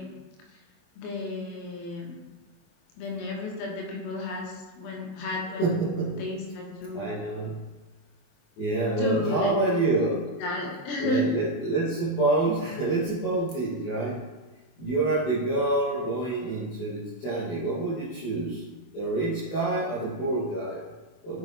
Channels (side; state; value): right; late; 24 ms